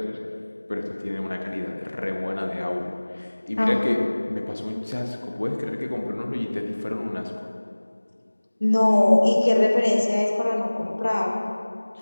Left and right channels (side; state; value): both; inverted; correlation -1.00